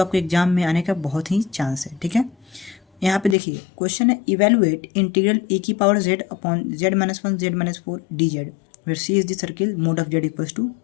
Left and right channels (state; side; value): drops out; right; at 3.4 s